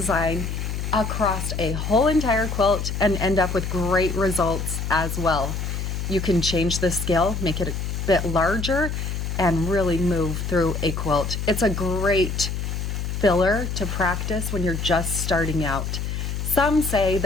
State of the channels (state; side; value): noise; left; hum, 3 dB below the sound